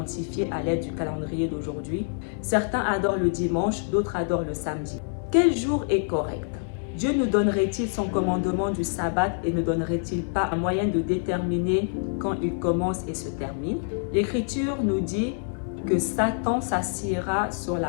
à l'aide du calendrier d'aujourd'hui? Certains adorent le dimanche, d'autres adorent le samedi. Quel jour est correct? Dieu nous donnerait-il son commandement du sabbat et ne donnerait-il pas un moyen de déterminer quand il commence et se termine? L'Écriture nous dit que Satan s'assiera sur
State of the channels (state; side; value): silent; right; 61 dB below the other